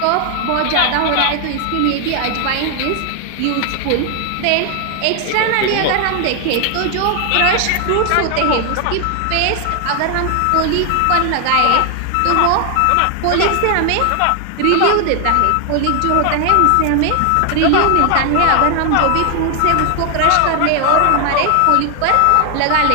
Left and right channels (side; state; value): both; different; correlation 0.00